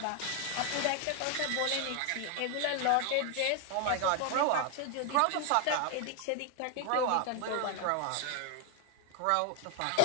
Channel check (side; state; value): both; different; correlation 0.00